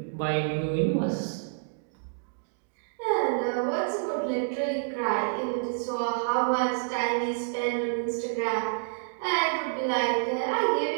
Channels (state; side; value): silent; left; digital silence